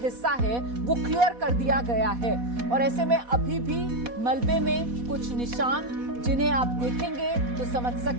है वो क्लियर कर दिया गया है, और ऐसे में अभी भी मलबे में कुछ निशान जिन्हें आप देखेंगे तो समझ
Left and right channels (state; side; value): late; left; 4.1 ms